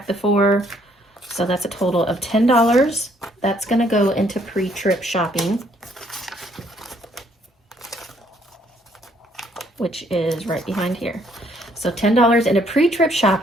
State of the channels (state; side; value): normal; both; correlation 0.66